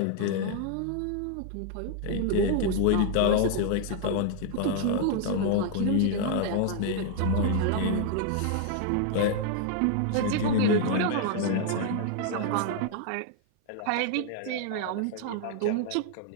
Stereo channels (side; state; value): both; different; correlation 0.00